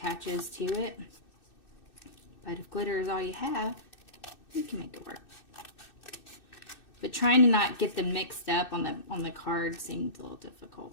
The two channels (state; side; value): late; right; 2.6 ms